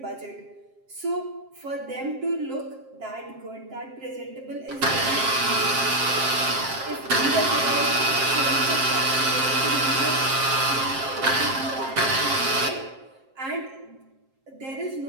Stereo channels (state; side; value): late; left; 7.5 ms